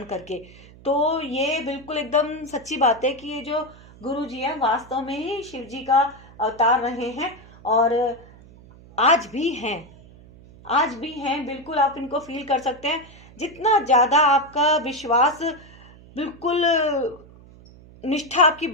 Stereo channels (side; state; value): right; noise; hum, 22 dB below the sound